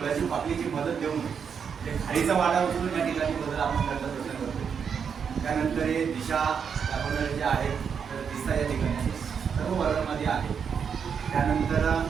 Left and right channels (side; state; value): left; quieter; 6.8 dB